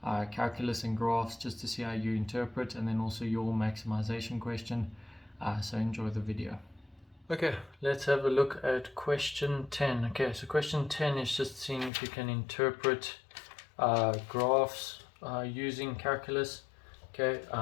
calculus and graphs, just to see how you interpret, and then also your maximization question. So enjoy the video. Okay, let's have a look at question 10. Okay, so question 10 is just seeing if you can interpret graphs using calculus. Okay,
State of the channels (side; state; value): right; drops out; at 11.9 s